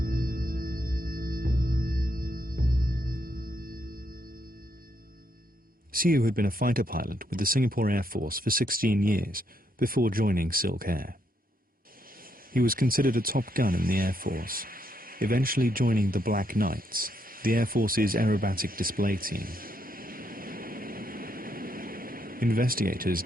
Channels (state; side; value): normal; both; correlation 0.76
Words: Siu had been a fighter pilot with the Singapore Air Force for 16 years before joining SilkAir. He was considered a top gun in the Air Force, eventually joining the Black Knights, the Air Force's aerobatic display team. Investigators